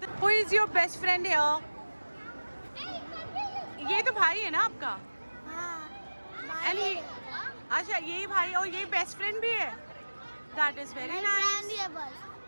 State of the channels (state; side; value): inverted; both; correlation -1.00